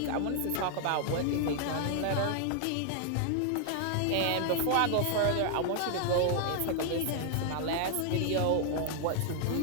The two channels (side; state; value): both; different; correlation 0.00